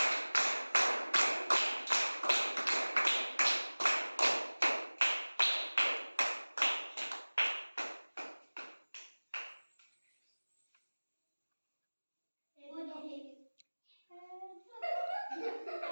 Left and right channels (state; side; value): inverted; both; correlation -1.00